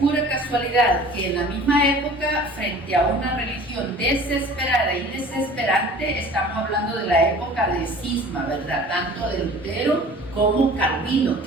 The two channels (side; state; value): both; normal; correlation 0.45